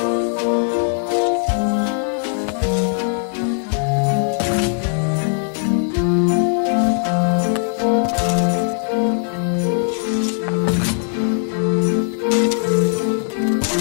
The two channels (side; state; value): right; silent; 58 dB below the other